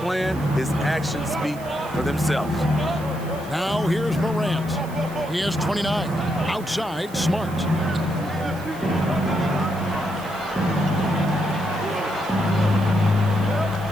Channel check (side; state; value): right; noise; hiss, 20 dB below the sound